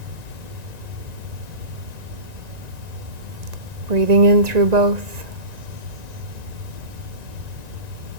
Breathing in through both.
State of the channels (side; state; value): left; late; 1.9 ms